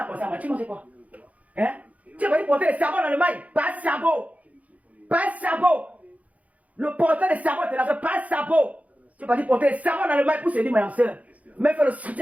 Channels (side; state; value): left; late; 0.070 ms